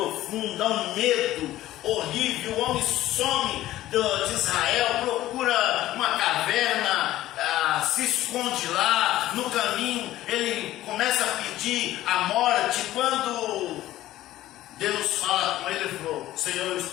um medo horrível. O homem some de Israel, procura uma caverna, se esconde lá. No caminho ele começa a pedir a morte. Quando Deus fala com ele, ele falou: Senhor, eu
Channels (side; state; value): right; quieter; 14.8 dB